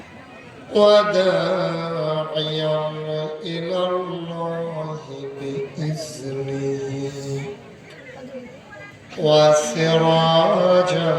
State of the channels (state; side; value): identical; both; correlation 1.00